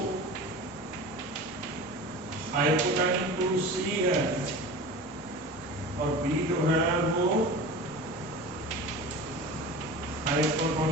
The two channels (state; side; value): normal; both; correlation 0.34